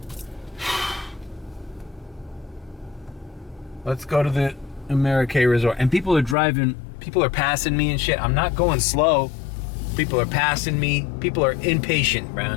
Let's go to the Amerique Resort. And people are passing me and shit. I'm not going slow. People are passing me. People are impatient,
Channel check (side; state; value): right; drops out; at 6.4 s